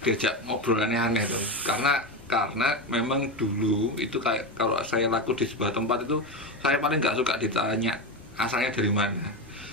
diajak ngobrol aneh-aneh tuh. Karena memang dulu itu kayak kalau saya laku di sebuah tempat itu saya paling nggak suka ditanya asalnya dari mana.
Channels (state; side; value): normal; both; correlation 0.16